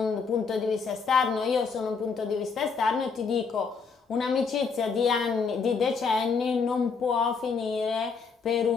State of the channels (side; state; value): right; quieter; 5.3 dB